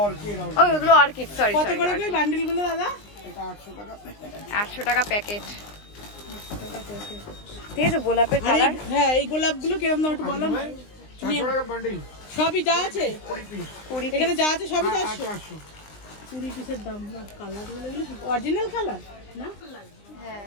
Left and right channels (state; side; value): late; right; 19 ms